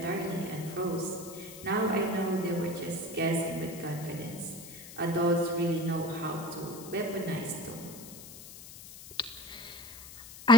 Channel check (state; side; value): noise; left; hiss, 15 dB below the sound